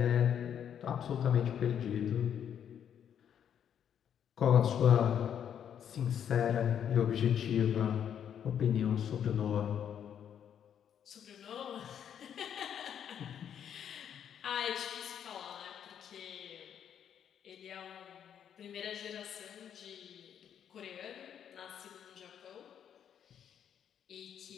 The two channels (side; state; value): right; quieter; 8.9 dB